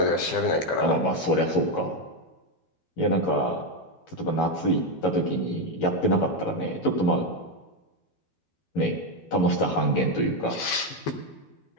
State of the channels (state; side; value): late; right; 12 ms